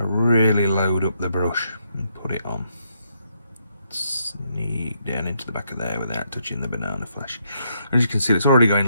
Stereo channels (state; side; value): inverted; both; correlation -0.76